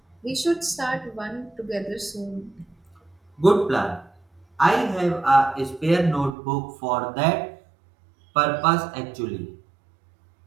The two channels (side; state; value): left; drops out; at 6.4 s